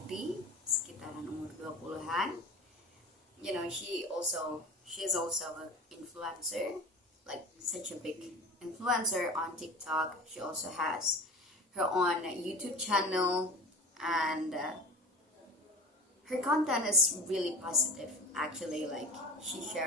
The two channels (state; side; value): normal; both; correlation 0.35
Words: sekitaran umur 20-an. She's also an influencer, like such a big influencer on TikTok. She also has her own YouTube channel, and her content is really positive. Actually, she